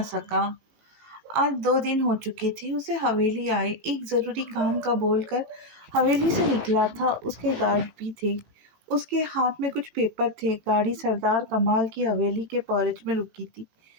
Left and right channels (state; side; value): late; left; 18 ms